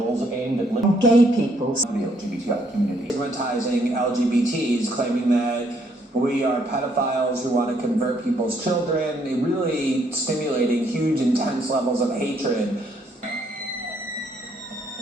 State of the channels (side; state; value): both; normal; correlation 0.70